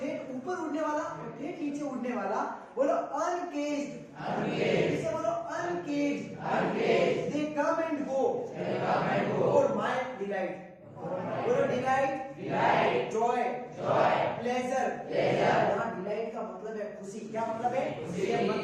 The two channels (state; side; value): identical; both; correlation 1.00